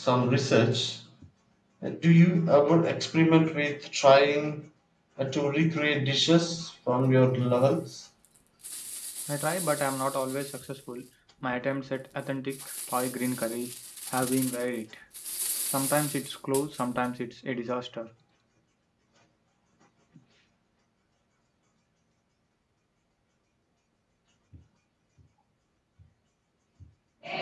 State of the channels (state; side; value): identical; both; correlation 1.00